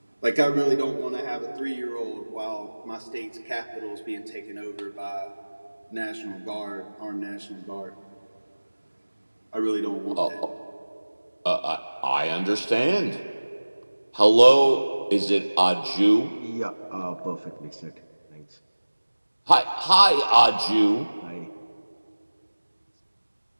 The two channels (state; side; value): inverted; both; correlation -1.00